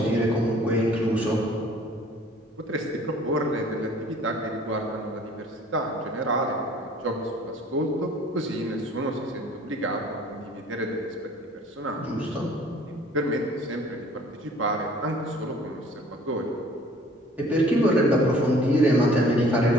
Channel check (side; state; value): both; normal; correlation 0.53